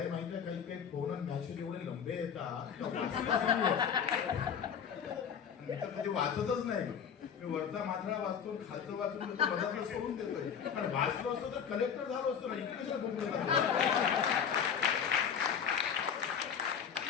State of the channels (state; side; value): quieter; right; 7.5 dB